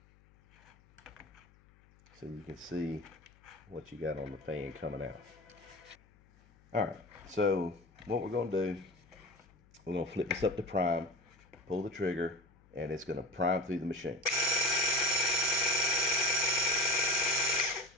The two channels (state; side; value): noise; left; hum, 29 dB below the sound